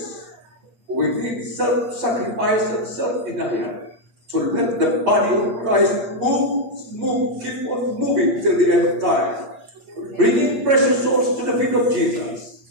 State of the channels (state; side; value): late; left; 8.5 ms